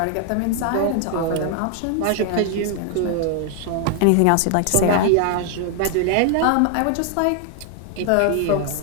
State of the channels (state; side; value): different; both; correlation 0.00